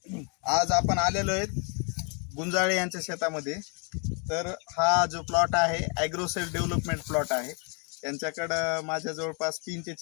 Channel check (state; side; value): quieter; right; 36.8 dB